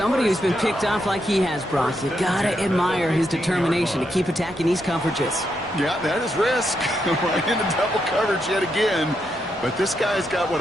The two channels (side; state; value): both; normal; correlation 0.81